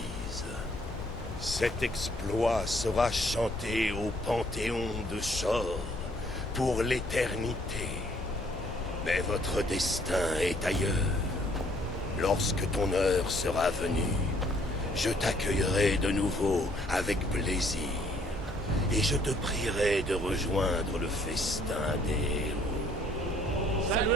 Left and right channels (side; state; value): both; normal; correlation 0.64